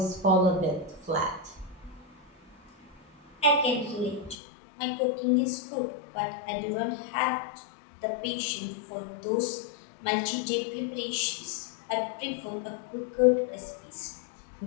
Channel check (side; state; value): right; drops out; at 4.4 s